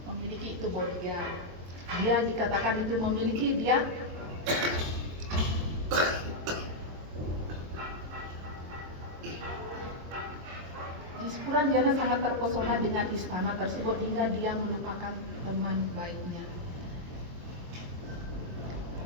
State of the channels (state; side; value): late; left; 23 ms